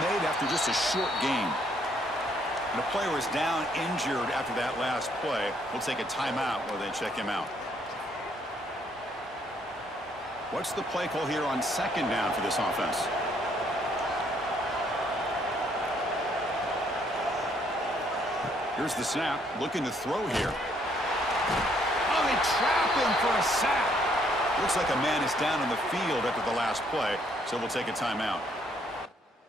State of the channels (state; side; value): normal; both; correlation 0.68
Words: after just a short gain. And the player is down injured after that last play. We'll take a timeout while they check him out. What's the play call here on 2nd down for this offense? Here's the snap. Looking to throw here. Oh, they trap him for a sack. Looks like a man is down on the field after the last play, so we'll take a timeout.